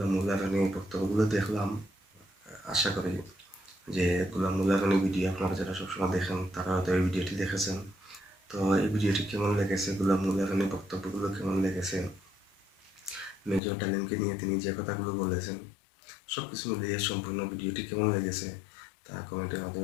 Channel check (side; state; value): right; drops out; at 13.6 s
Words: মোল্লা রানীর বক্তব্যগুলো দেখলাম। আশা করি যে গোলাম মোল্লা রানী ভিডিও আপনারা যারা সবসময় দেখেন তারা হয়তো এই ভিডিওটি দেখেছেন। তো এই ভিডিওটি কেমন লেগেছে, গোলাম মোল্লা রানীর বক্তব্যগুলো কেমন লেগেছে, মেজর ডালিমকে নিয়ে তিনি যে কথাগুলো বলেছেন, সব কিছু মিলিয়ে সম্পূর্ণ ভিডিওটি কেমন লেগেছে তা কমেন্টের